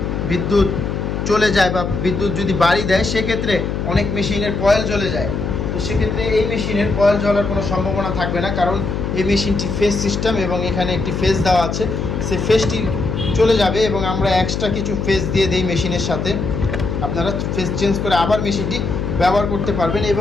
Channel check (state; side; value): noise; left; hum, 3 dB below the sound